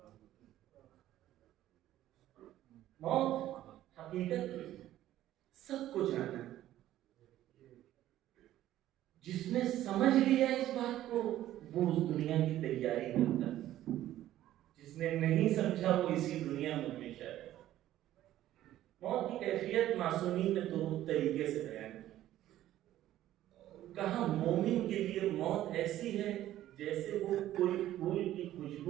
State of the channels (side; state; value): left; quieter; 13.4 dB